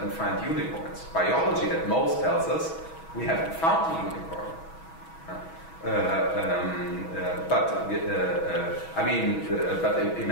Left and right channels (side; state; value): right; late; 6.2 ms